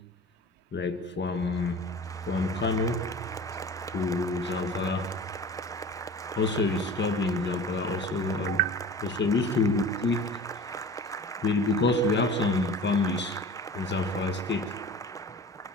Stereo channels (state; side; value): normal; both; correlation 0.39